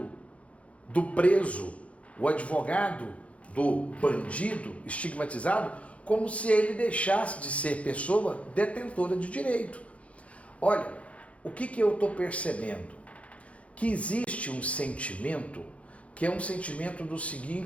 do preso, o advogado do bandido estigmatizado, como se ele deixasse de ser pessoa detentora de direito. Olha, o que eu estou percebendo? Que existe um sentimento que é um sentimento do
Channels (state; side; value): late; right; 0.064 ms